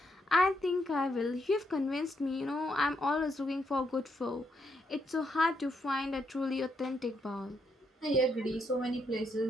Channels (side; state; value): both; normal; correlation 0.78